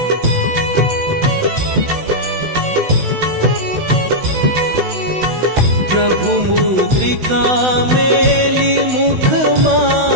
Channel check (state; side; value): late; left; 16 ms